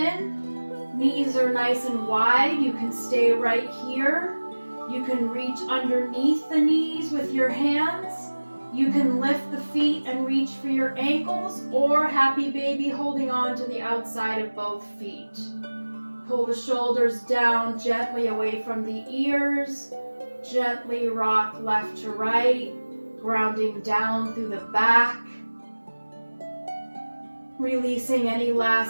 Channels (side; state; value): both; inverted; correlation -1.00